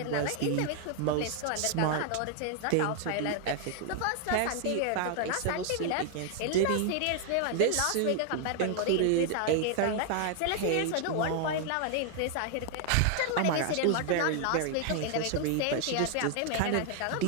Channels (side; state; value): both; different; correlation 0.00